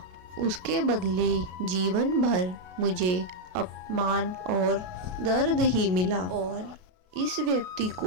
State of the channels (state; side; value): late; left; 32 ms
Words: उसके बदले जीवन भर मुझे अपमान और दर्द ही मिला और इस व्यक्ति